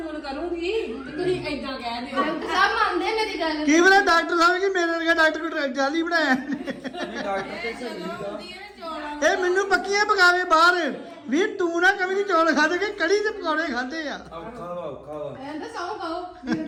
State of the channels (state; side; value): identical; both; correlation 1.00